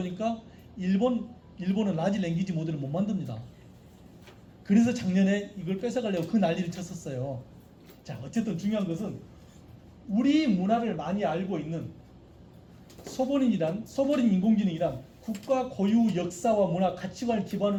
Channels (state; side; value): identical; both; correlation 1.00